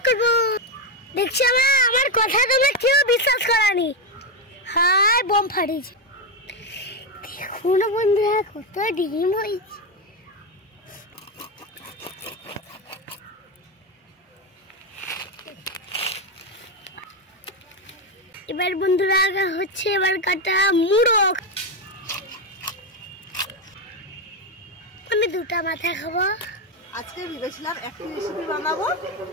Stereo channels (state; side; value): normal; both; correlation 0.08